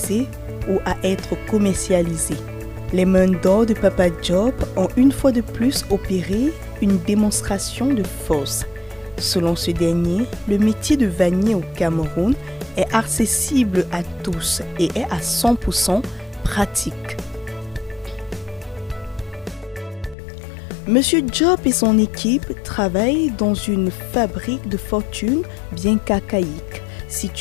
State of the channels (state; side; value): drops out; right; at 20.2 s